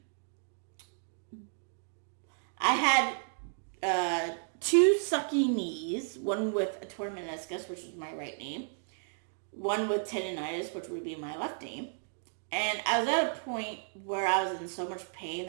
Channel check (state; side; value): silent; left; digital silence